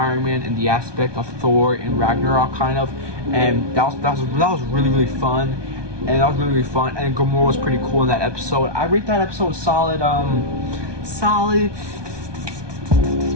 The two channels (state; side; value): late; left; 1.2 ms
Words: Man in the aspect of Thor and Ragnarok kind of, and that was really fun, and And Gamora was pretty cool in that episode. I rate that episode solid